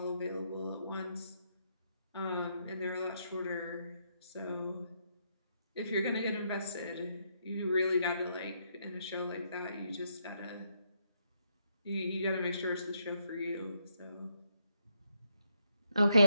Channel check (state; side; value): inverted; both; correlation -0.76